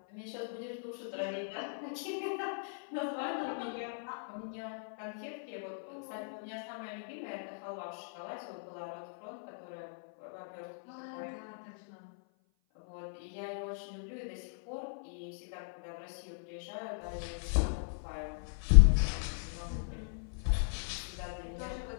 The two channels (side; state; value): right; silent; 53 dB below the other